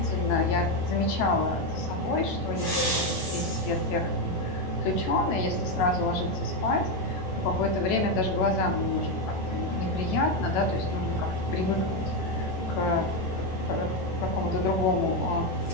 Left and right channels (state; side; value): late; right; 10 ms